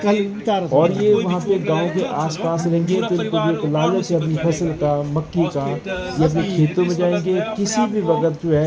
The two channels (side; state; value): both; identical; correlation 1.00